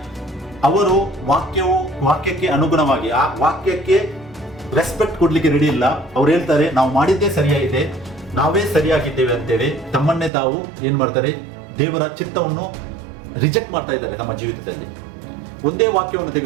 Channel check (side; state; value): left; drops out; at 10.3 s